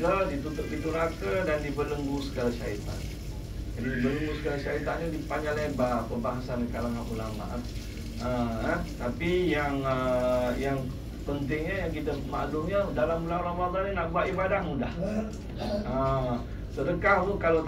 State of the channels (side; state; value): both; identical; correlation 1.00